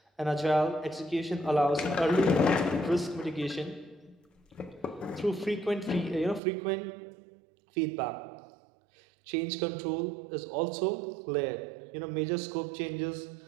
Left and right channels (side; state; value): left; drops out; at 6.4 s